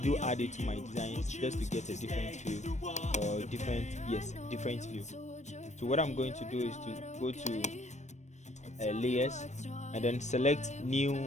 add it to my designs just to get a different feel or different view. So what I'm going to do is to go to layers and then select new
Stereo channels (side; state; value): right; late; 0.34 ms